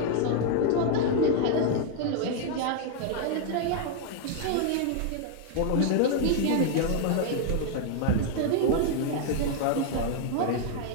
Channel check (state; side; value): different; both; correlation 0.00